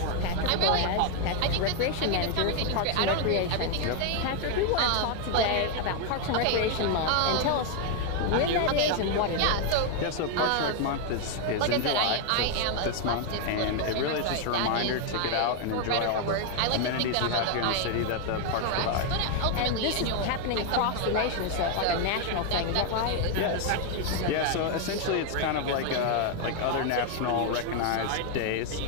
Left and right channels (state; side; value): different; both; correlation 0.00